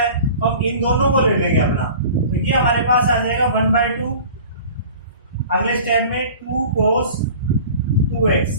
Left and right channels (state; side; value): inverted; both; correlation -0.42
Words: है, तो हम इन दोनों को ले लेंगे अपना। तो ये हमारे पास आ जाएगा 1 बाई 2, अगले स्टेप में 2 cos 2x